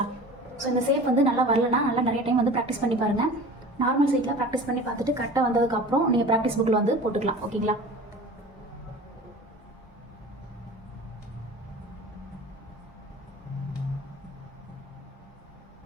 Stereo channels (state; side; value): normal; both; correlation 0.39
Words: ஸோ இந்த சேப் வந்து நல்லா வரலன்னா நல்லா நிறைய டைம் வந்து ப்ராக்டிஸ் பண்ணி பாருங்கள். நார்மல் சைட்டில் ப்ராக்டிஸ் பண்ணி பார்த்துட்டு கரெக்டாக வந்ததுக்கப்புறம் நீங்கள் ப்ராக்டிஸ் புக்கில் வந்து போட்டுக்கலாம். ஓகேங்களா,